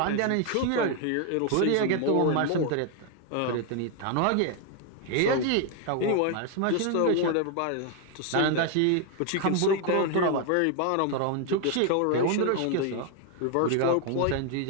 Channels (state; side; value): different; both; correlation 0.01